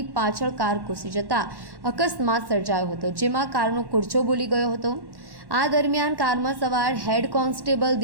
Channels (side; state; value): left; late; 1.1 ms